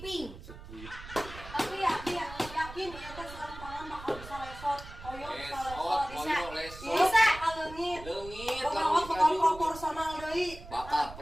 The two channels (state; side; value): noise; right; rumble, 14 dB below the sound